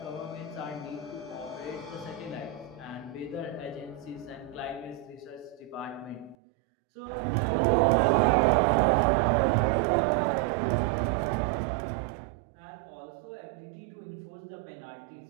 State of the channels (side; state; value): left; drops out; at 6.4 s